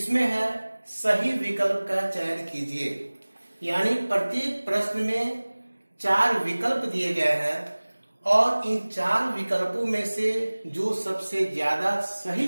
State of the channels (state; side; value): inverted; both; correlation -1.00